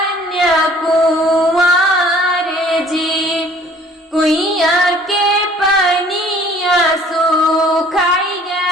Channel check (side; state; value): both; normal; correlation 0.54